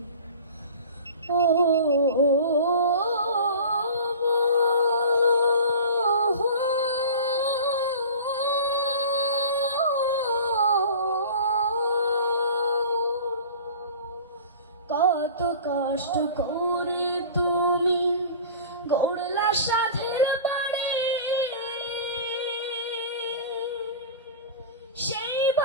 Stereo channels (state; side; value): inverted; both; correlation -0.38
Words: ও কত কষ্ট করে তুমি গড়লা সাধের বাড়ি, সেই